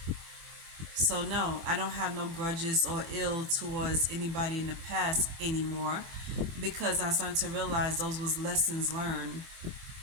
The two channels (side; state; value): left; late; 24 ms